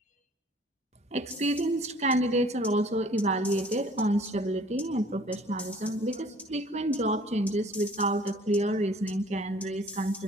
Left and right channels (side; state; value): both; normal; correlation 0.54